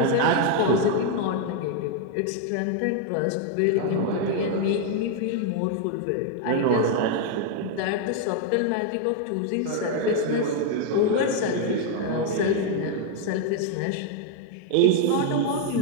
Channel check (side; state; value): both; different; correlation 0.01